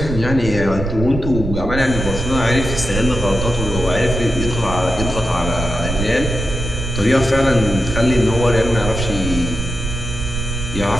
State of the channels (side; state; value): right; noise; rumble, 5 dB below the sound